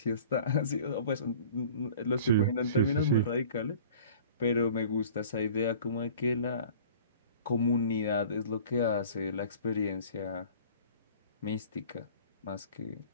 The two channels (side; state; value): both; inverted; correlation -0.45